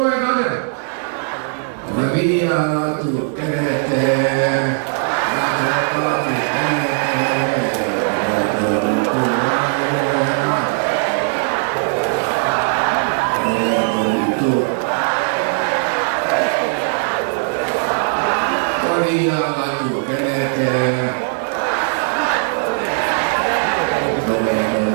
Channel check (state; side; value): silent; left; 57 dB below the other